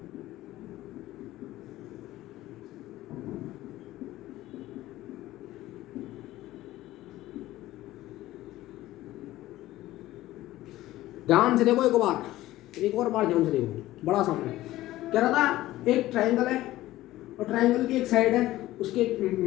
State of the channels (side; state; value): right; quieter; 15.9 dB